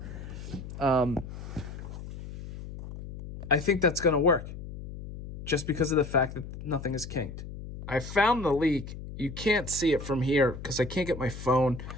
I think that's going to work. just because of the fact that nothing is kinked. I found the leak. You can't see it from here because I can't get my phone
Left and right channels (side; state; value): left; noise; hum, 11 dB below the sound